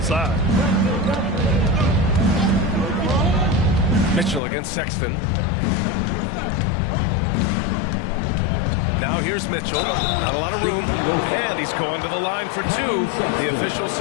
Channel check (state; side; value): drops out; right; at 4.4 s